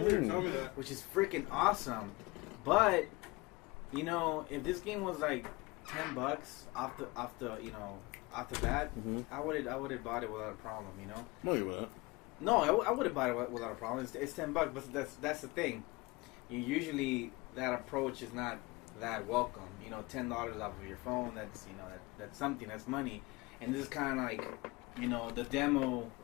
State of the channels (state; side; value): quieter; right; 23.6 dB